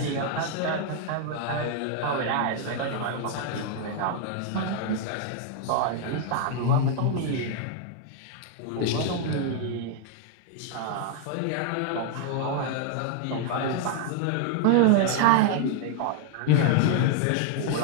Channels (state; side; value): different; both; correlation 0.00